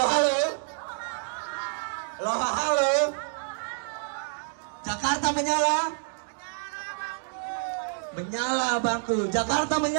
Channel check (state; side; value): silent; left; digital silence